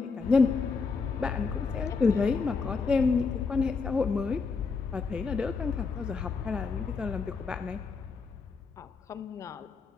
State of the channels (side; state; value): right; quieter; 4.7 dB